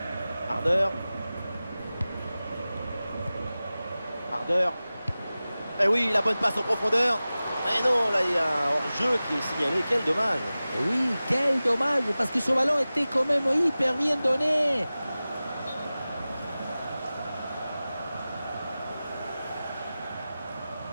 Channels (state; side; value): inverted; both; correlation -0.96